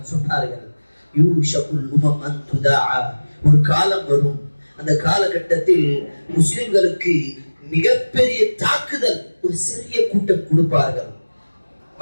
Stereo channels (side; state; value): both; inverted; correlation -1.00